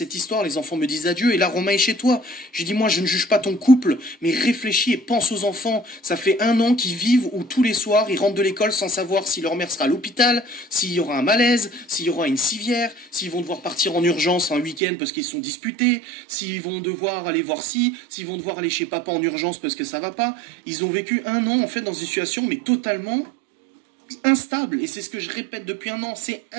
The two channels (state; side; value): drops out; left; at 14.8 s